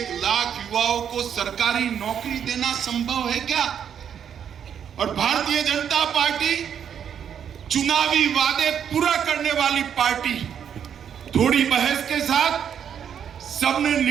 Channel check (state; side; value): quieter; left; 8.4 dB